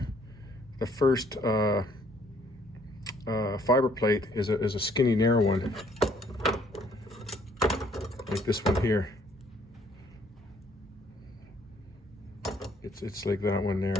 fiber plate is a skinny, narrow one, like this one here. It's like that one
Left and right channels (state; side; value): normal; both; correlation 0.64